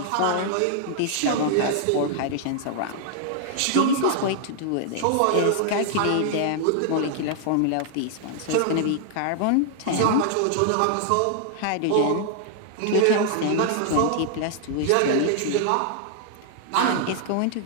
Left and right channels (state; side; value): different; both; correlation -0.01